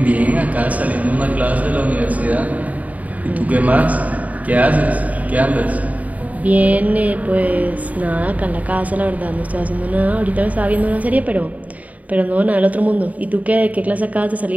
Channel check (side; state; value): left; late; 0.071 ms